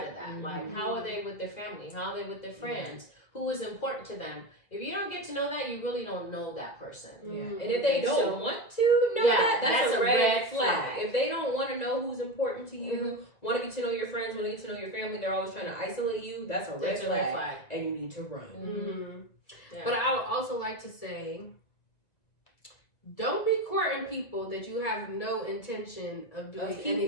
of that. Like, how are they with their family? How are they with their friends? Who is important to them? If you don't get to know that, you really don't know that person. And if they don't want to know that's a red flag. If they don't want to know who's important to you, want to get to know your friends, want to get to know your family, they're always trying to isolate you, that's a red flag. And you need to run. But I would also like to say, don't be courting people that you have no intention of doing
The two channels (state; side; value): late; right; 1.9 ms